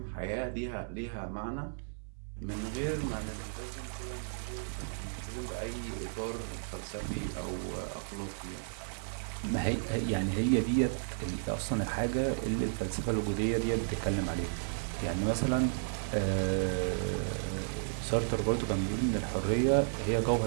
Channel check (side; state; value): left; silent; 55 dB below the other